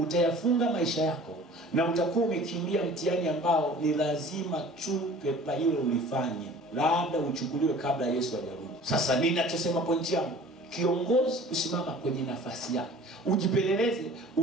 maisha yako na utakuwa umekimbia mtihani ambao ni lazima tu pepa ile ulifanye, labda uchukuliwe kabla Yesu hajarudi. Sasa ninachosema pointi yangu, kiongozi usimama kwenye nafasi yako. Ujipeleleze,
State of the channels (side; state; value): both; normal; correlation 0.46